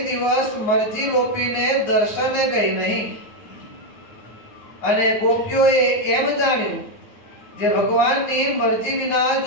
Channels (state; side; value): late; right; 9.2 ms